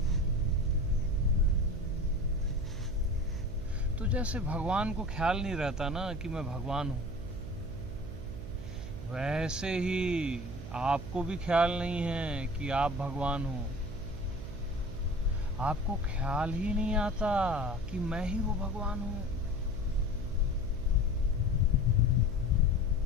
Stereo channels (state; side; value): noise; right; hum, 11 dB below the sound